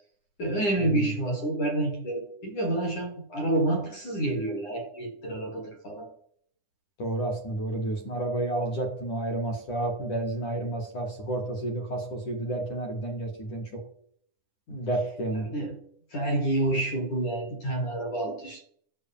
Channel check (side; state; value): right; late; 9.9 ms